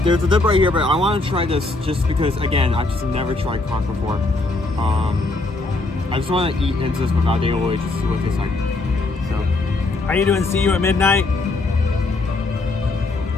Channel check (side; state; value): right; quieter; 3.2 dB